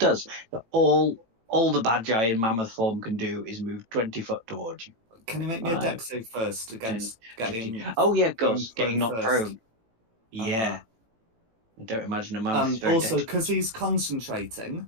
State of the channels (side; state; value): left; late; 18 ms